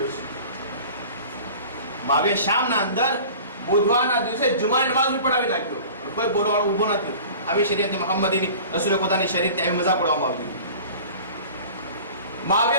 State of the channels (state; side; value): inverted; both; correlation -0.41